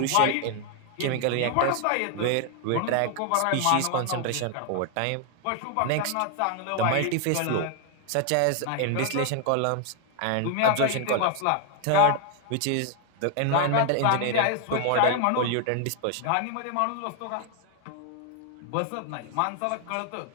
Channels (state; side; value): different; both; correlation 0.00